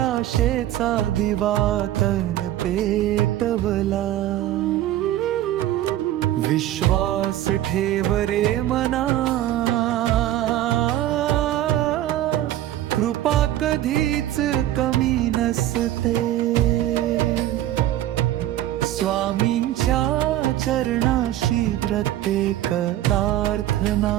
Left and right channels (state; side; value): quieter; left; 13.4 dB